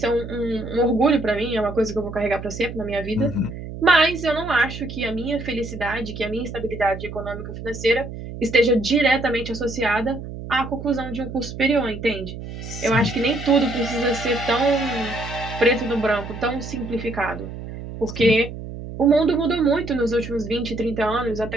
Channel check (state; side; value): noise; right; hum, 10 dB below the sound